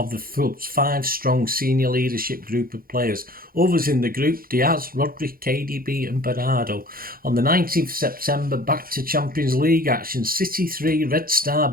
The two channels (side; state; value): left; late; 0.42 ms